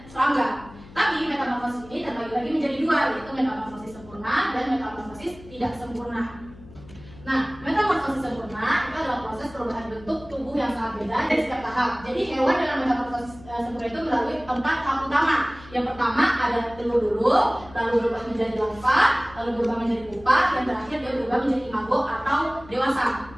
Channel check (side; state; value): left; noise; hum, 20 dB below the sound